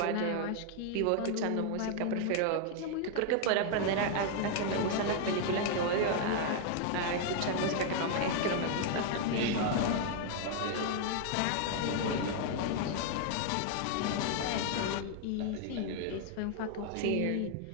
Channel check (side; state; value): both; different; correlation 0.00